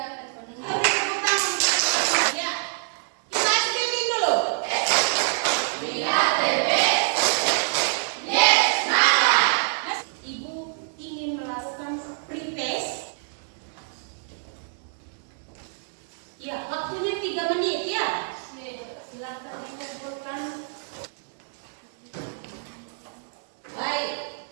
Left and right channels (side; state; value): left; silent; digital silence